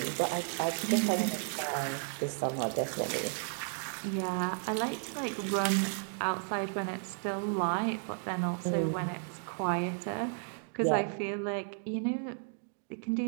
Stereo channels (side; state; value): left; silent; 55 dB below the other